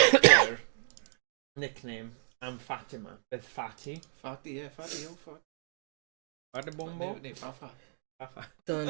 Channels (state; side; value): silent; left; 56 dB below the other